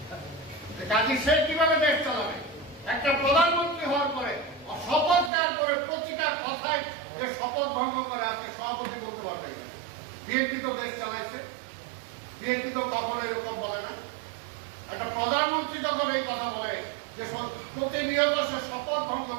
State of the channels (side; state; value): left; drops out; at 5.3 s